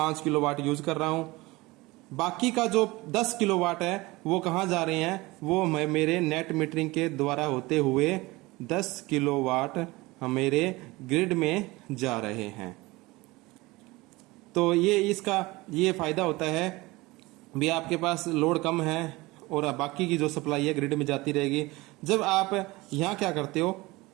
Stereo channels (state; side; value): quieter; left; 21.6 dB